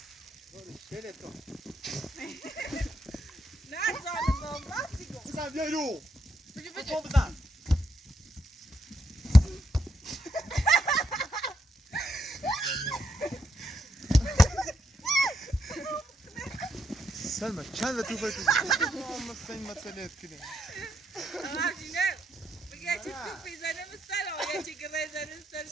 شیله تو نه زانم راستی کن بزن بیا رو بجو بزن من چند تو فکر مثل این مسئله کنه نه بگه چی تو پیزنه مستر آیا چی که بزنه سر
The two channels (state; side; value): normal; both; correlation 0.78